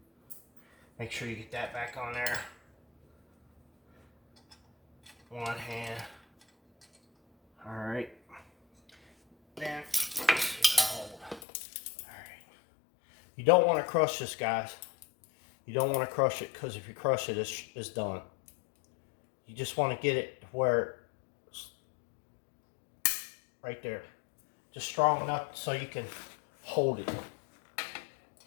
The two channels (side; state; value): right; drops out; at 11.4 s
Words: Make sure you get that back on there. One hand. All right. Then, let's see if I hold. All right. You don't want to crush this, guys. You don't want to crush it, because if you crush it, it's done. You just want to get it where it's right there. Just strong enough so you can hold it.